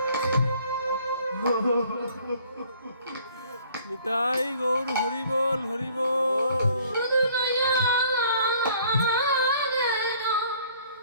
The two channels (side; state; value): both; inverted; correlation -0.57